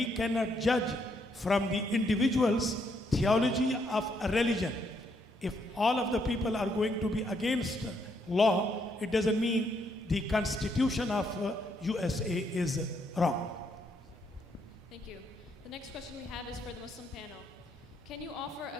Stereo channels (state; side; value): normal; both; correlation 0.74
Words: cannot judge from the individual's theology of a religion. If all of the people are going to be against law, it doesn't mean the constitution of USA is wrong. Thank you. The next question we have is for the Muslim panel. Can you offer a